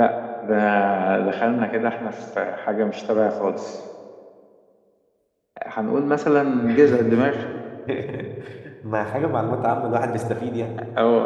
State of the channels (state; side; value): identical; both; correlation 1.00